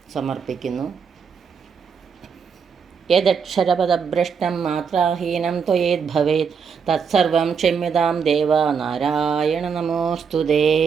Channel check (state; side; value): quieter; left; 6.3 dB